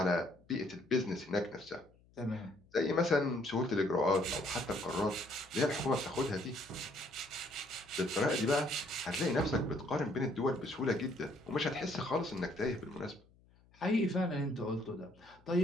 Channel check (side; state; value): left; noise; hum, 29 dB below the sound